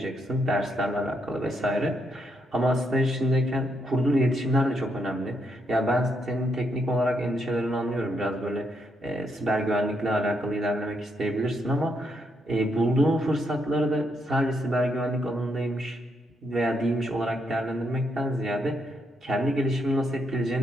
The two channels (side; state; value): both; normal; correlation 0.78